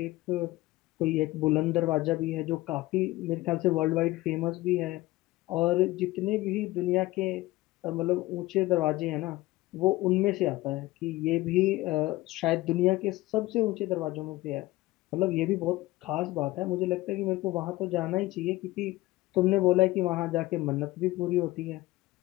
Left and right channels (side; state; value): right; quieter; 18.6 dB